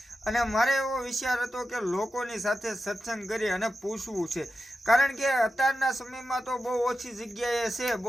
અને મારે એવો વિચાર હતો કે લોકોની સાથે સત્સંગ કરી અને પૂછવું છે. કારણ કે અત્યારના સમયમાં તો બહુ ઓછી જગ્યાએ છે,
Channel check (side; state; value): both; normal; correlation 0.91